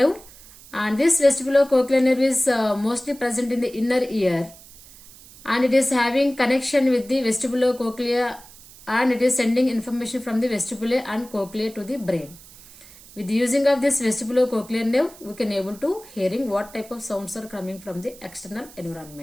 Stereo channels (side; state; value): right; noise; hiss, 21 dB below the sound